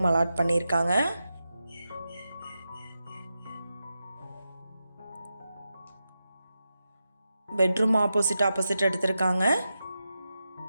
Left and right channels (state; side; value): inverted; both; correlation -0.90